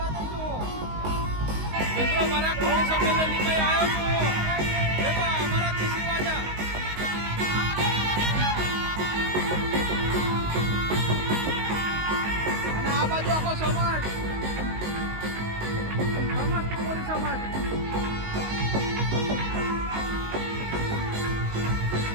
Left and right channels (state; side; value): late; left; 19 ms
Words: જ છું. મિત્રો મારા કોળી સંમેલનની મેં આવ્યો છું. દેખો અમારા ખુશી વાજા. અને આ બાજુ આખો સમાજ સમસ્ત કોળી સમાજ.